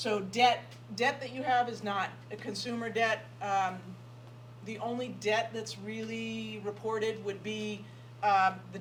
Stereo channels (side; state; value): both; identical; correlation 1.00